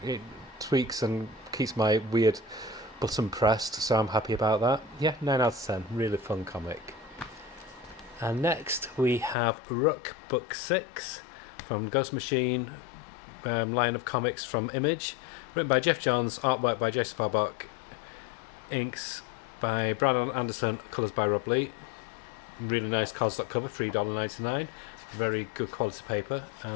tweaks and keeps my weird button pressed, so I'm happy about that. Yeah, 9 out of 10. Really fun comic. And next we have Rook Book 6 from Ghost Machine line of comics from Image, written by Jeff Johns, artwork by Jason Farbach, inks by Brandon Anderson, colours by Rob Lee. Really nice cardstock cover, $3.99. Very good quality paper,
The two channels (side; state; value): right; drops out; at 9.3 s